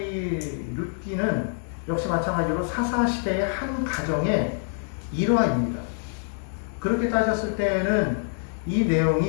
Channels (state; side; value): silent; right; 60 dB below the other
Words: 룻기는 역시 마찬가지로 사사시대의 한 가정의 일화입니다. 그렇게 따졌을 때에는 이